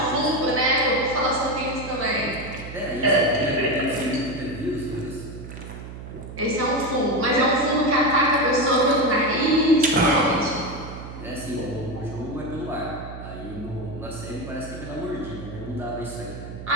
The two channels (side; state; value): right; noise; hum, 11 dB below the sound